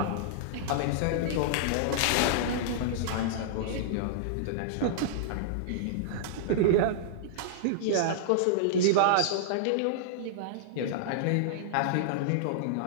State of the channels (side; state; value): both; different; correlation -0.02